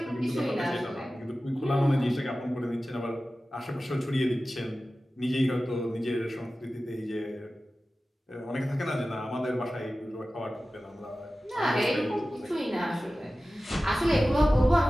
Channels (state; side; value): normal; both; correlation 0.95